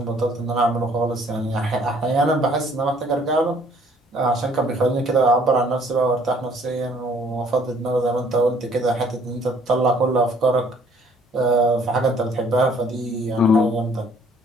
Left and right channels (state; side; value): normal; both; correlation 0.60